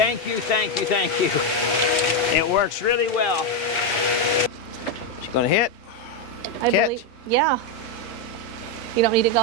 you, thank you, thank you. It works really well. She's gonna hit. I believe. Yeah. You don't need it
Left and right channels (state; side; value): normal; both; correlation 0.05